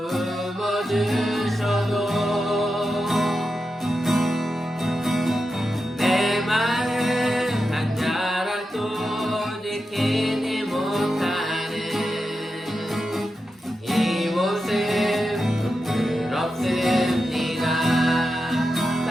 품어주셔도 내 마음 한 자락도 지키지 못하는 이 모습 부끄럽습니다.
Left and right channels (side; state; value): both; normal; correlation 0.89